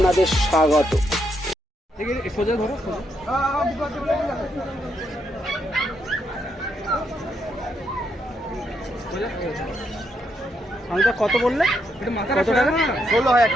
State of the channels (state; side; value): normal; both; correlation 0.78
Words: স্বাগত। সোজা ধরো, সোজা। কত বললে? কত টাকা? 16,000